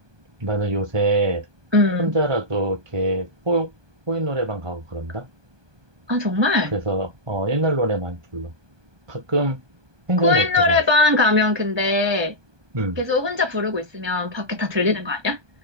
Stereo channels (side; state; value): left; late; 1.2 ms